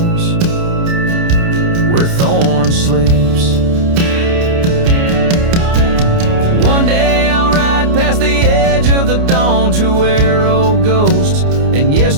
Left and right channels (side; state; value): left; late; 29 ms